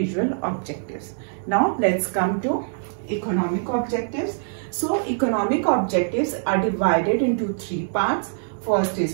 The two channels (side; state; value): left; silent; digital silence